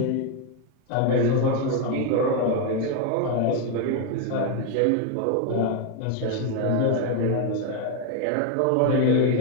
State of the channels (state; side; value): different; both; correlation 0.01